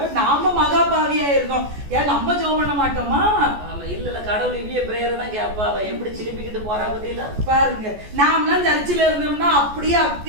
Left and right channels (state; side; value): late; left; 14 ms